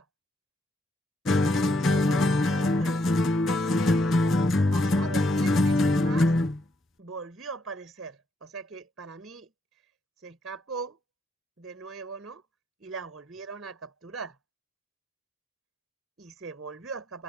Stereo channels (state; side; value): normal; both; correlation 0.76